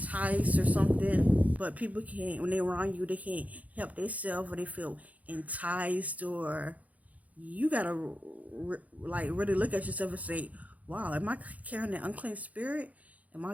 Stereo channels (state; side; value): late; left; 0.073 ms